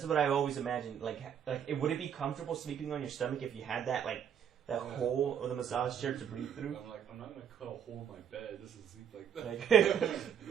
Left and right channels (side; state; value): left; quieter; 8.5 dB